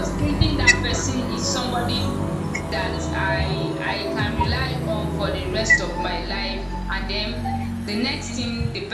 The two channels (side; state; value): both; identical; correlation 1.00